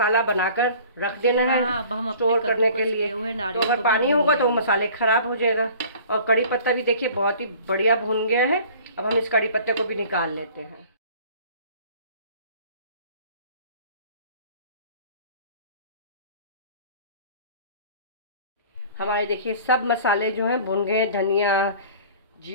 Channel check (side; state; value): both; inverted; correlation -0.47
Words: बनाकर रख देना है स्टोर करने के लिए। तो अगर पानी होगा तो वो मसाले खराब हो जाएगा। और कड़ी पत्ता भी देखिए बहुत ही बढ़िया भून गया है। अब हम इस कड़ी पत्ते को भी निकाल लेते हैं। हमारे देखिए सब मसाले जो हैं भुन गए। धनिया,